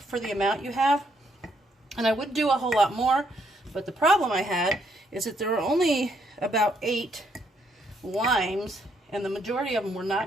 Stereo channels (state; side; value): normal; both; correlation 0.73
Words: for the amount you have. And I would do a whole lot more, but the problem I had is that there were only about 8 limes, and the majority of them were